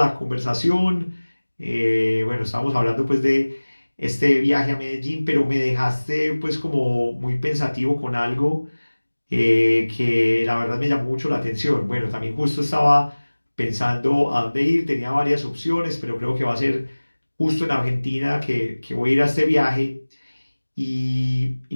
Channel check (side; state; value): both; inverted; correlation -1.00